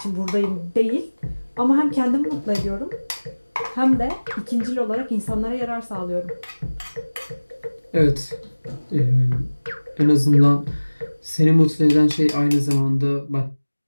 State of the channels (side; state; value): both; inverted; correlation -1.00